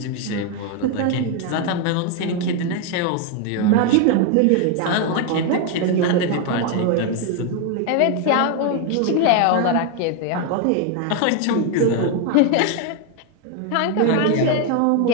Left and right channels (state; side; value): different; both; correlation 0.01